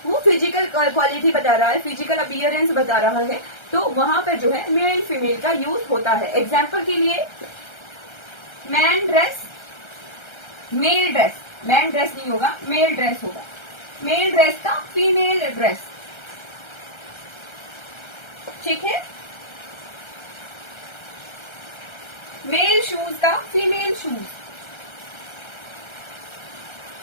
वो फिजिकल क्वालिटी बता रहा है, फिजिकल अपीयरेंस बता रहा है, तो वहां पर जो है मेल फीमेल का यूज होता है। एग्जाम्पल के लिए man dress, male dress, man dress नहीं होगा, मेल ड्रेस होगा। मेल ड्रेस का फीमेल ड्रेस। ठीक है, मेल शूज का फीमेल शूज।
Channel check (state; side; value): late; right; 1.3 ms